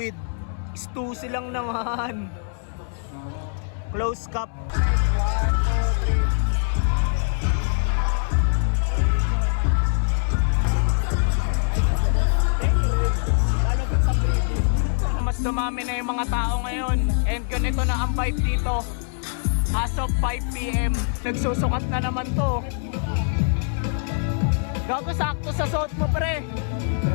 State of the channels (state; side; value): silent; right; digital silence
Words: Stussy lang naman. Close cup. Mas dumami na yung mga tao ngayon and ganito na ang vibe dito as of 5 PM. Nagsusukat na naman to. Gago, sakto sa suot mo, pre.